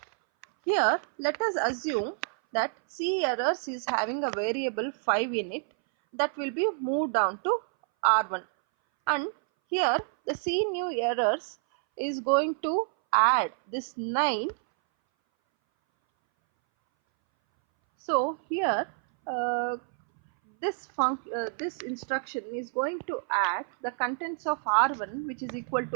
Here let us assume that C errors is having a variable 5 in it that will be moved down to R1, and here the C new errors is going to add this 9. So here this instruction is going to add the contents of R1 which is equal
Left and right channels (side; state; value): left; silent; 59 dB below the other